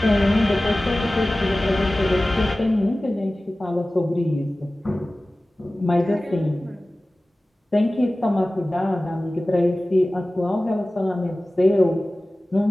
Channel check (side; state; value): both; normal; correlation 0.97